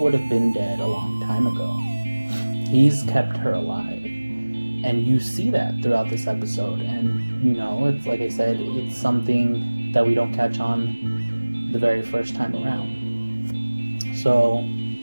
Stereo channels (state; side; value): inverted; both; correlation -1.00